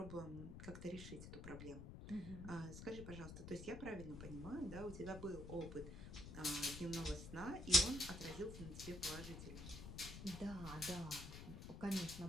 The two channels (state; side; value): noise; left; rumble, 9 dB below the sound